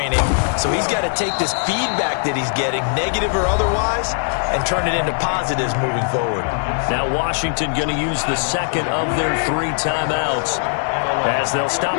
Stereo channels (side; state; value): right; silent; 66 dB below the other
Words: So he's got to take this feedback that he's getting, negative or otherwise, and turn it into positives moving forward. Now Washington going to use the 2nd of their 3 timeouts as they'll